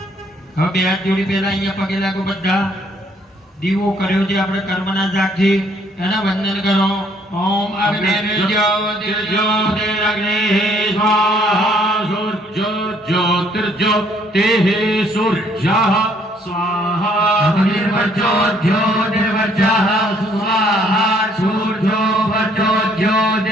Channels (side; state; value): both; normal; correlation 0.65